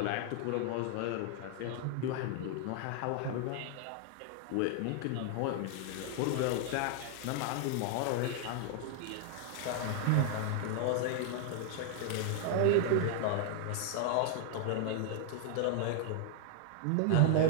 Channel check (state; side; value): different; both; correlation 0.00